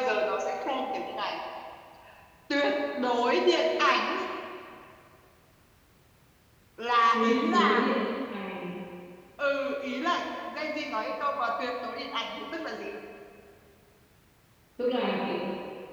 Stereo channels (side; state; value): both; identical; correlation 1.00